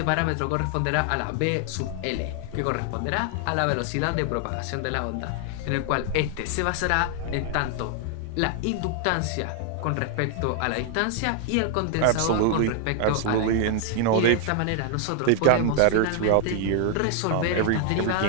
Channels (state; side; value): different; both; correlation 0.00